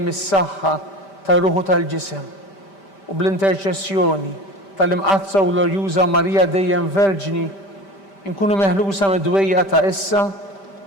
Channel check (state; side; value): late; right; 5.1 ms